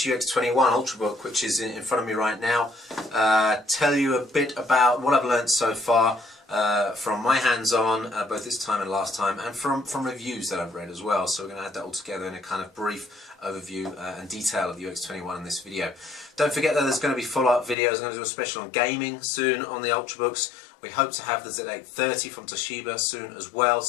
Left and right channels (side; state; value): right; drops out; at 17.8 s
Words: UX21 Ultrabook, which is in front of me right now. Tell you a bit about what I've learned so far from my hands-on, both this time and last time, and from reviews that I've read as well. So we're going to add that all together in a kind of brief overview and detail of the UX21 in this video. Don't forget that there's going to be follow-up videos. I'm going to do a special on gaming soon on the Ultrabooks. We hope to have the Z830 from Toshiba soon as well,